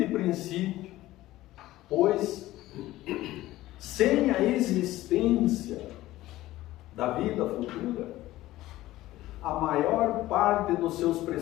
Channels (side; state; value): right; quieter; 16.3 dB